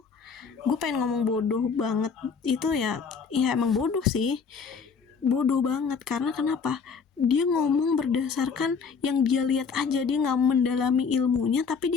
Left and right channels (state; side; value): quieter; right; 5.7 dB